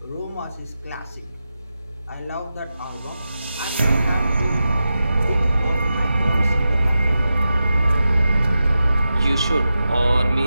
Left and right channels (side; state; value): both; inverted; correlation -0.91